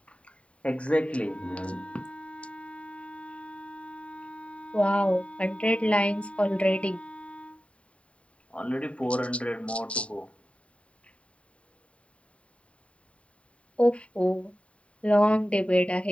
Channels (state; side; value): late; right; 0.063 ms